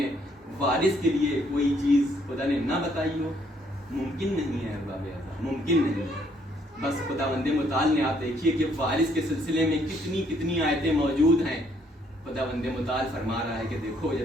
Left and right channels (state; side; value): normal; both; correlation 0.68